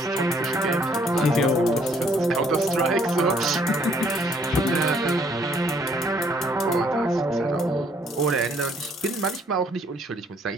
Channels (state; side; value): normal; both; correlation 0.64